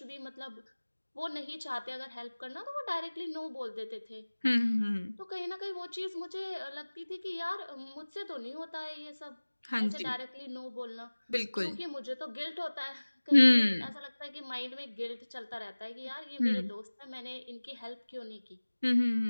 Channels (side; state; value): both; inverted; correlation -1.00